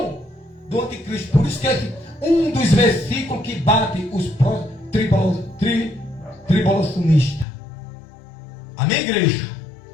do anticristo. Por isso que é um dos versículos que bate os tribulacionistas. Amém, igreja?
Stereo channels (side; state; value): right; drops out; at 7.5 s